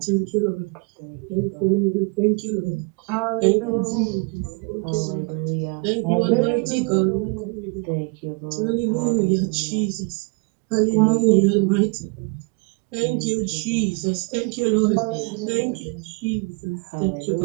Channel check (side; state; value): left; quieter; 31.1 dB